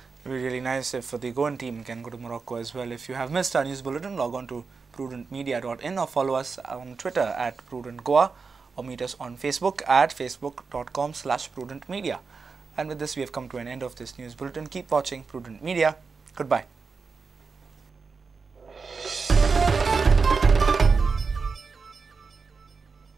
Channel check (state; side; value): quieter; left; 4.9 dB